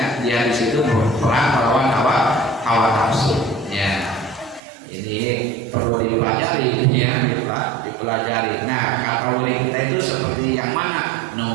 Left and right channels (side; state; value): left; drops out; at 4.6 s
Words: dia di situ perang melawan hawa nafsu. Ya, ini perlu dipelajari, ya, dipelajari. Nah, kategori kita itu seperti yang mana?